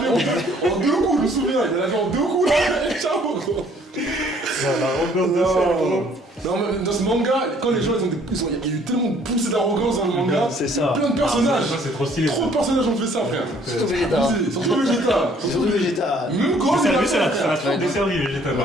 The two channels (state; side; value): normal; both; correlation 0.60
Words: en 2 coups, je me souviens, il a lavé en 2 coups là, et ciao gros. Non, mais dans ce manga, quand les gens il y a eu tellement poussé d'arrogance dans le manga, C'est ça. plein de personnages, Ça, c'est trop stylé. trop de personnages ont fait ça frère. Surtout Vegeta. Abusé, surtout Vegeta. Surtout Vegeta. Même Gohan, Ça il a lui, ça fait. l'a trop desservi, Vegeta,